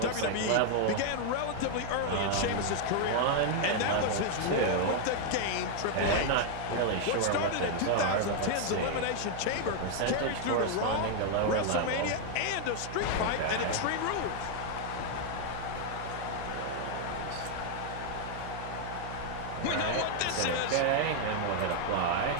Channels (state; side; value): different; both; correlation 0.00